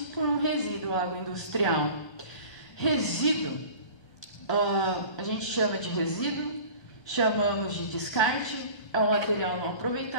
por um resíduo agroindustrial. Resíduo, a gente chama de resíduo, chamamos de descarte, é um material não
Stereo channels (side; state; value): right; late; 1.3 ms